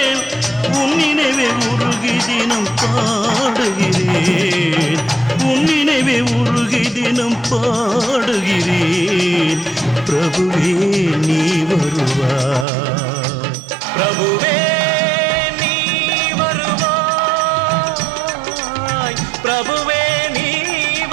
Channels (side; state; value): left; drops out; at 12.7 s